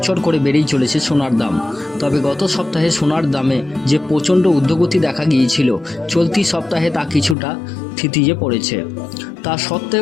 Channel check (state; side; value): drops out; right; at 7.4 s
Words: করে বেড়েই চলেছে সোনার দাম। তবে গত সপ্তাহে সোনার দামে যে প্রচণ্ড ঊর্ধ্বগতি দেখা গিয়েছিল, চলতি সপ্তাহে তা কিছুটা থিতিয়ে পড়েছে। তা